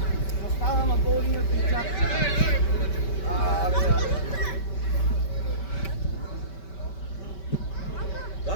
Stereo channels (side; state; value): right; late; 5.2 ms